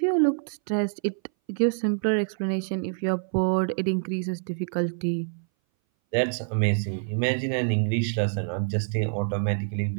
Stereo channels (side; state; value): left; silent; 59 dB below the other